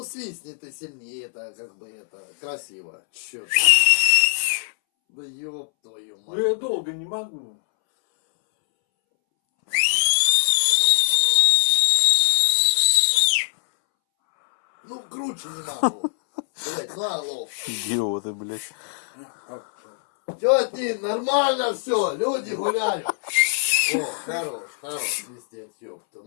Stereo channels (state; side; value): silent; right; 64 dB below the other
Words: свистни ты сильнее, это как бы это красиво. Чё ты? Да ёб твою Ну мать. я долго не могу. Ну круче не могу. Блять, ну алло. Идиоты, блядь. Тети, нормально все, люди гуляют. О, хорош свистеть, ёпта.